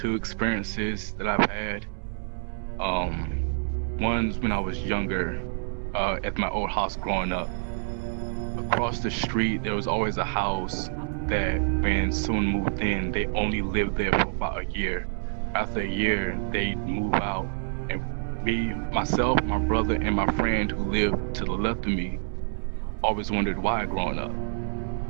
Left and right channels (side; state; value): left; silent; 60 dB below the other